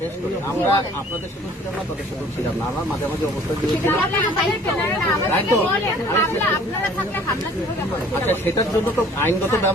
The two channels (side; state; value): both; normal; correlation 0.53